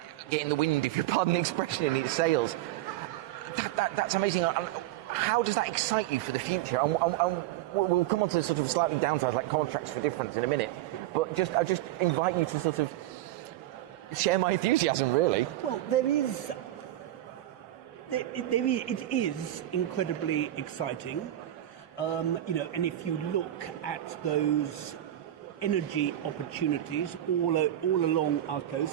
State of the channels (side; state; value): left; quieter; 13.8 dB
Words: getting the wind, if you pardon the expression, in its sails. That's amazing. How does that excite you for the future? We'll come on to sort of slightly downsides like contracts for difference in a minute, but I just invite you to sort of share my enthusiasm, really. Well, it is incredibly exciting, and if you look at those energy opportunities all along our